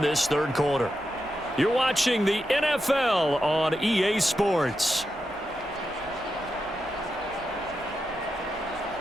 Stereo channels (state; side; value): normal; both; correlation 0.87